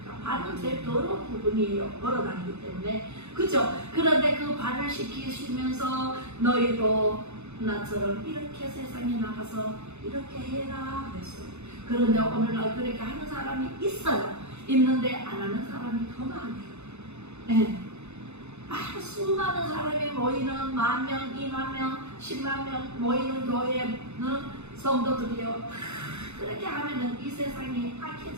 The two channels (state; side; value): late; left; 0.81 ms